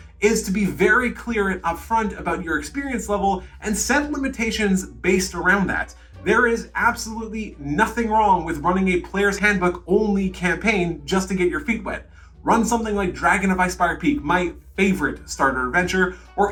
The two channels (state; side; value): identical; both; correlation 1.00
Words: is to be very clear and upfront about your experience level and set limitations based around that. There is absolutely nothing wrong with running a player's handbook only campaign just to get your feet wet. Run something like Dragon of Icespire Peak, my favorite starter adventure, or